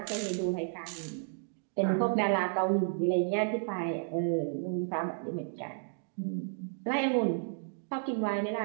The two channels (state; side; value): silent; left; digital silence